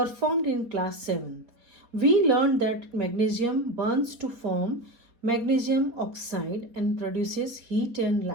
in class 7th. We learned that magnesium burns to form magnesium oxide and produces heat and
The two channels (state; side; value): late; left; 4.2 ms